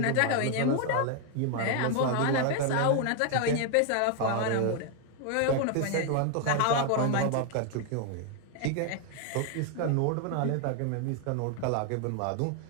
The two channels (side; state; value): both; different; correlation 0.00